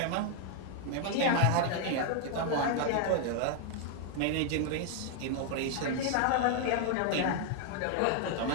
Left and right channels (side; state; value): both; different; correlation 0.00